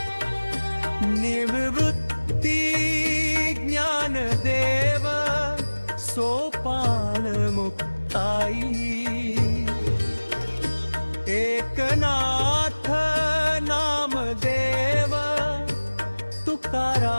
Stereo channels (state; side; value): inverted; both; correlation -1.00